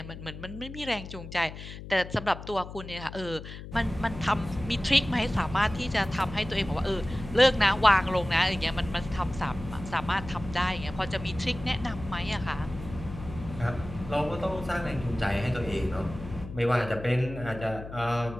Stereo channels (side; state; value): left; noise; hum, 12 dB below the sound